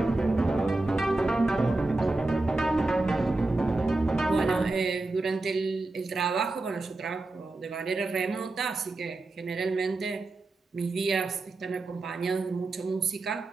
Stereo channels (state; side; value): quieter; left; 3.0 dB